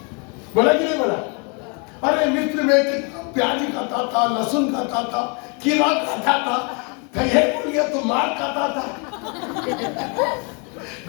बोला कि नहीं बोला? अरे मिस्र में कितना प्याज खाता था, लहसुन खाता था, कीड़ा खाता था, ये बोल गया तो मार खाता था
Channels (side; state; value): right; quieter; 34.7 dB